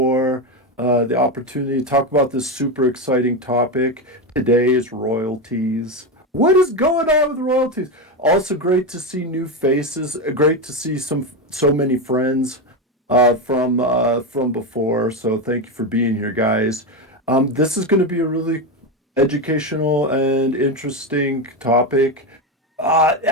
the opportunity to talk about this super exciting topic. Today is royalties. What is going on with royalties? Also, great to see new faces. Great to see so many friends from before. So thank you for being here, guys. This is going to be a really educational and interesting topic.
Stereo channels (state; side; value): normal; both; correlation 0.13